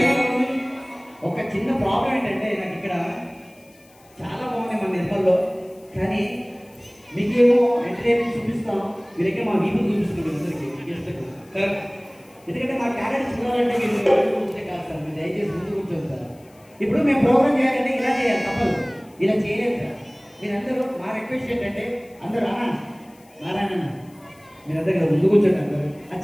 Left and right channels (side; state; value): left; noise; hiss, 30 dB below the sound